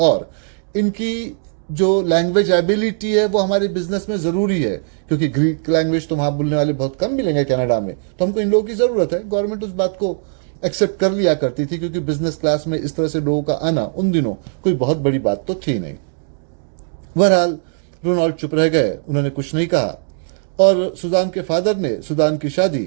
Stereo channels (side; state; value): left; silent; digital silence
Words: इनकी जो लैंग्वेज एबिलिटी है वो हमारे बिजनेस में ज़रूरी है, क्योंकि ग्रीक लैंग्वेज तो वहाँ बोलने वाले बहुत कम मिलेंगे कनाडा में, तो हमको इन लोगों की ज़रूरत है। गवर्नमेंट उस बात को एक्सेप्ट कर लिया करती थी, क्योंकि बिजनेस क्लास में इस तरह से लोगों का आना उन दिनों कोई बहुत बड़ी बात तो थी नहीं। बहरहाल रोनाल्ड चुप रह गए, उन्होंने कुछ नहीं कहा, और सुजान के फादर ने सुजान की